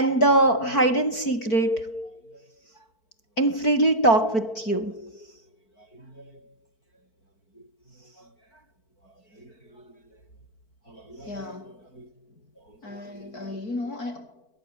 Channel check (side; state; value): right; late; 4.5 ms